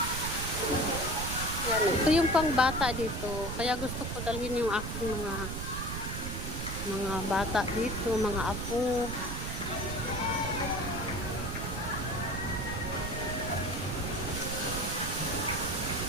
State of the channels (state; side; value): noise; right; rumble, 5 dB below the sound